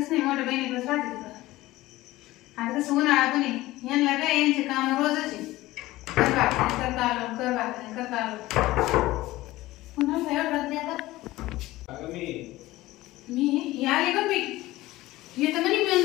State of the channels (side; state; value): right; quieter; 17.7 dB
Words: नाही, मोठ्या बहिणीकडेच राहते तिकडं. आता कसं उन्हाळा पण आहे, यांना काय यांचे काम रोजच आहे. कर भाकरी करता आलो, कर भाकरी करता आलो. पुन्हा एवढं राहते आता. मी आले का मी येतं म्हणे